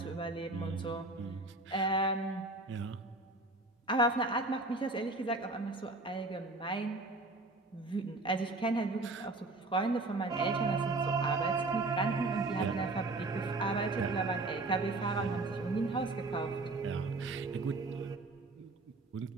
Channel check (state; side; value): quieter; left; 3.1 dB